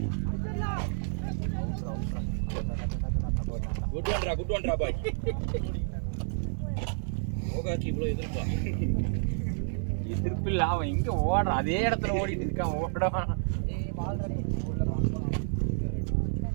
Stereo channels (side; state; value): left; silent; digital silence